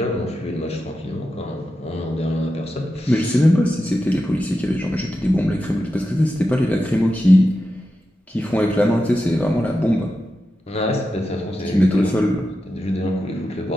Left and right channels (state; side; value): normal; both; correlation 0.90